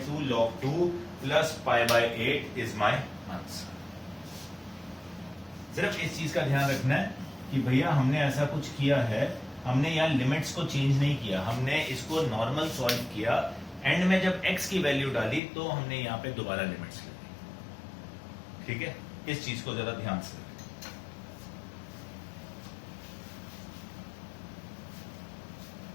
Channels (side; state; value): right; drops out; at 15.4 s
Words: log 2 plus π/8 is my answer. सिर्फ इस चीज का ध्यान रखना है कि भैया हमने ऐसा कुछ किया है, हमने यहाँ लिमिट्स को चेंज नहीं किया, हमने इसको नॉर्मल सॉल्व किया, एंड में जब x की वैल्यू डाली तो हमने यहाँ पे दोबारा लिमिट्स ले ली, ठीक है। इस चीज को जरा ध्यान से,